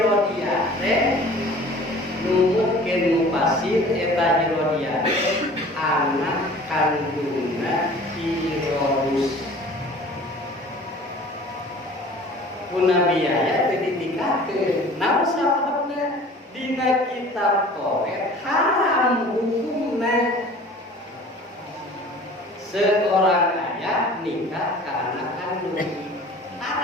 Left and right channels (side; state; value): both; normal; correlation 0.45